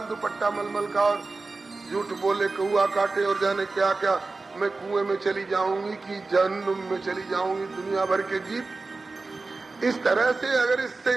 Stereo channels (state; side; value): quieter; left; 3.7 dB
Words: दुपट्टा मलमल का, और झूठ बोले कौआ काटे और जाने क्या क्या, मैं कुएं में चली जाऊंगी कि जहन्नुम में चली जाऊंगी, दुनिया भर के गीत। इस तरह से अगर इससे